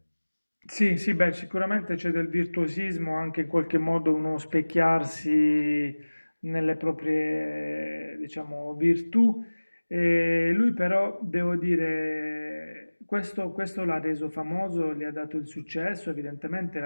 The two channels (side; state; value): both; inverted; correlation -1.00